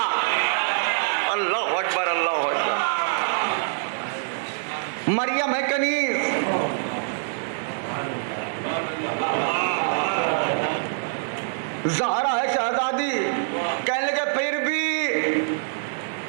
अल्लाह अकबर, अल्लाह अकबर। मरियम है कनीज, ज़हरा है शहजादी। कहने लगे फिर भी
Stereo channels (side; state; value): left; silent; digital silence